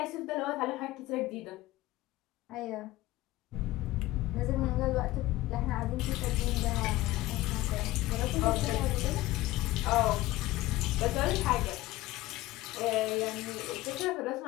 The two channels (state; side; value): quieter; right; 17.4 dB